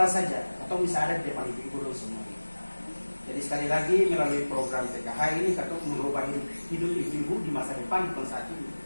saja, katong bisa ada di depan ibu-ibu semua. Jadi sekali lagi melalui program PKH ini katong merubah hidup ibu-ibu di masa depan bukan saat ini,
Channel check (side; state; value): both; inverted; correlation -1.00